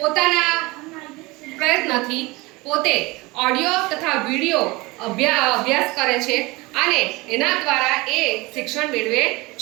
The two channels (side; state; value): left; quieter; 23.1 dB